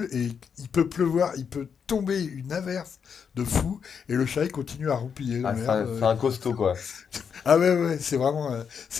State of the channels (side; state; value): right; quieter; 6.8 dB